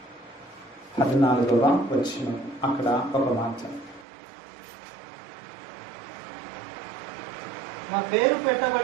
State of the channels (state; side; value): drops out; left; at 4.0 s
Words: 14వ వచనం. అక్కడ ఒక మాట, నా పేరు